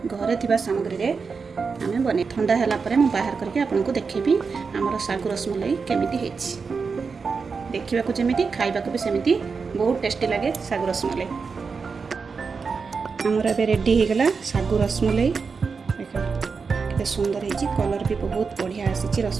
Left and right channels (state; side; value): quieter; left; 5.1 dB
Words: घरे थिबा सामग्री रे आम बने ठंडा हैला परे मु बाहर करके आपनको देखेबी आमर सागु रसमलाई केमिति हेछि। देखिबा को जेमिति खाइबा को भी सेमिति बहुत टेस्टी लगे सागु रसमलाई। आमर एबे रेडी हो गला सागु रसमलाई। देखो सुंदर है कलर भी बहुत बढ़िया आसी